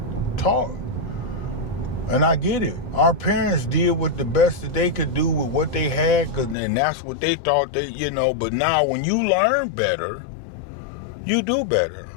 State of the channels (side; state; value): right; drops out; at 6.6 s